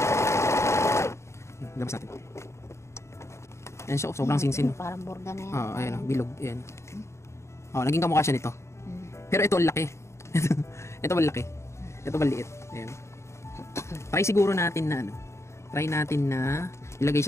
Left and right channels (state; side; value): late; right; 0.13 ms